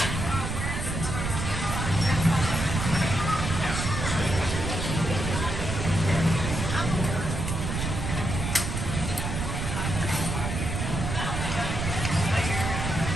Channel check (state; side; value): noise; right; rumble, 3 dB below the sound